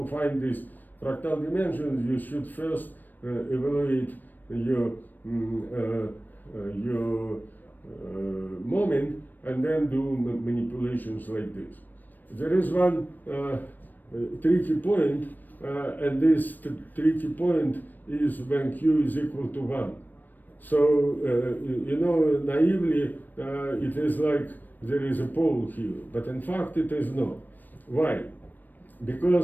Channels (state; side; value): late; right; 0.089 ms